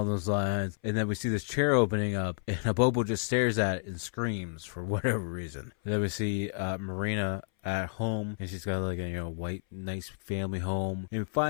those lines. And then we see this chair opening up, and a Bobo just stares at it and screams for whatever reason. And then we see Marina at home, and she's got like a white nice family home, and we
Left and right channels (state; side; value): silent; right; 57 dB below the other